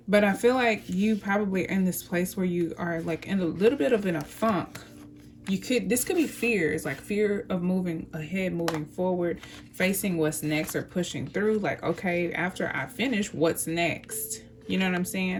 But I feel like you probably are in this place where you are like in a little bit of a funk, this could be fears, like fear of moving ahead, moving forward, facing what's next, or pushing through. Like, okay, after I finish, what's next? You know what I'm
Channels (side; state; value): both; identical; correlation 1.00